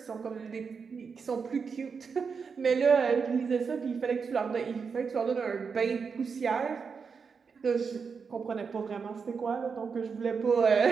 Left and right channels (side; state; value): left; quieter; 5.6 dB